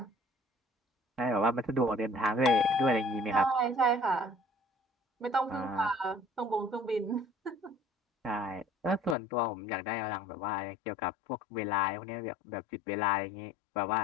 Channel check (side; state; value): right; drops out; at 9.2 s